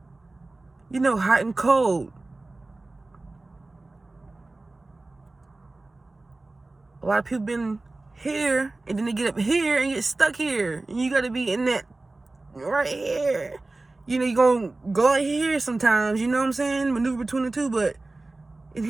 You know, hot and cold. A lot of people been here, and then they get up here and get stuck here. And you got to be in that right here. You know, you're going to go out here sometimes, you know what I'm saying? Maneuver between the two, but in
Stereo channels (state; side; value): quieter; left; 3.1 dB